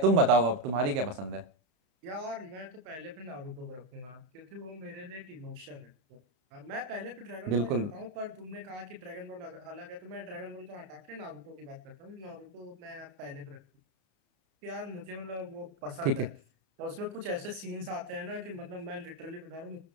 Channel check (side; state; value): left; late; 32 ms